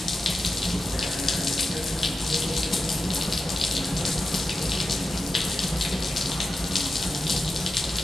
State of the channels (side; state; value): both; normal; correlation 0.91